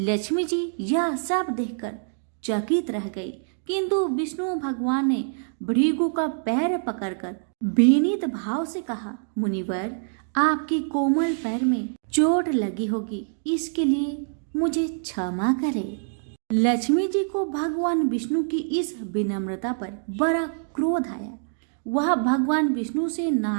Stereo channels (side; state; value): left; silent; digital silence